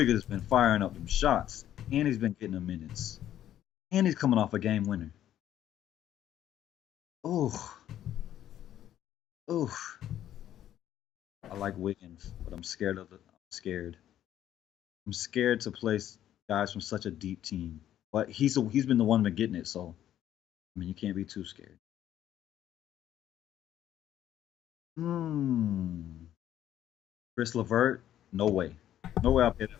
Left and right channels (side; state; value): right; quieter; 11.5 dB